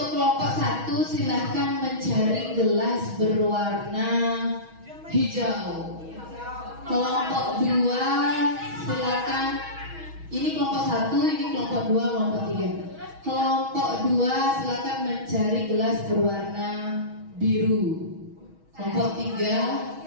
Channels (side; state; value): left; late; 6.3 ms